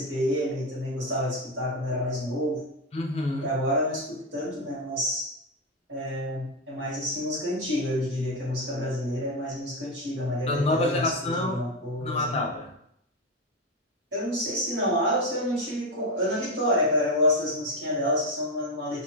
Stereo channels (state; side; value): normal; both; correlation 0.11